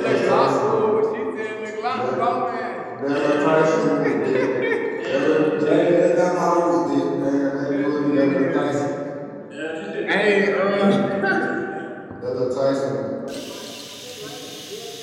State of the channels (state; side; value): identical; both; correlation 1.00